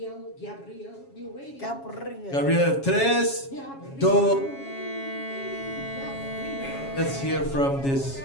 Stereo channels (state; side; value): late; right; 7.3 ms